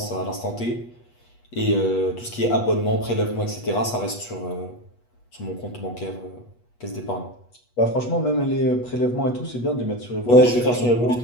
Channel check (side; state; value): right; late; 8.3 ms